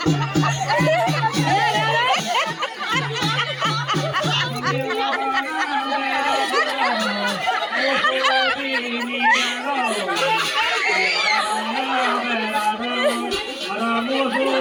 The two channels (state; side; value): identical; both; correlation 1.00